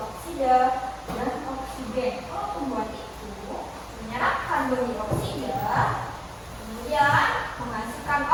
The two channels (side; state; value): both; identical; correlation 1.00